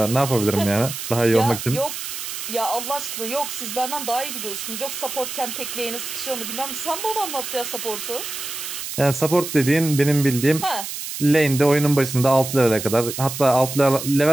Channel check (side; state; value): right; noise; hiss, 7 dB below the sound